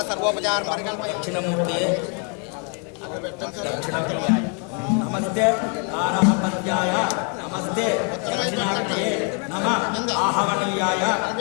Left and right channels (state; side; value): quieter; right; 36.5 dB